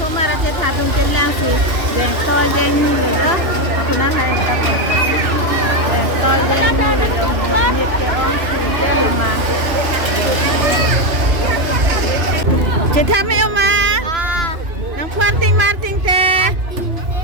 mà ra trên tháp trên lang thì đèn to đèn như rồi đó, aku nak hay kita đèn to đèn như rồi đó, nhiệt cái on thì đèn là mà. Trên tháp mấy ông mà, nang puanting marting te,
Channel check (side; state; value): left; late; 3.0 ms